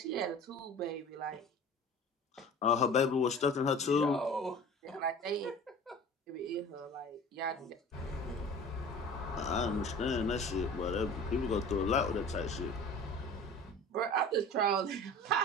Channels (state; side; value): normal; both; correlation 0.41